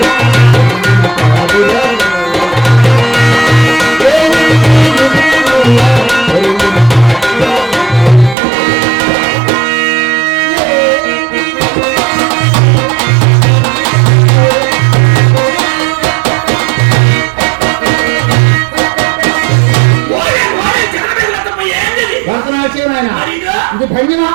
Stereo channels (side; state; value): left; drops out; at 8.3 s